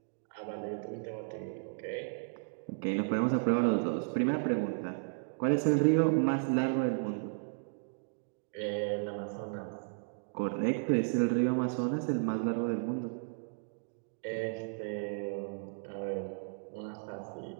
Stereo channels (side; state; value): left; silent; digital silence